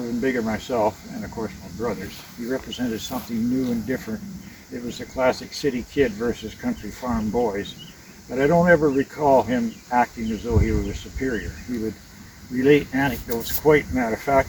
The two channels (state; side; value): identical; both; correlation 1.00